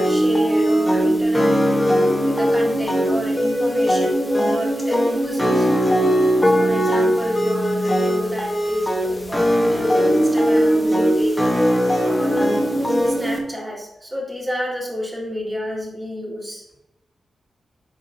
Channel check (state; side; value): normal; both; correlation 0.92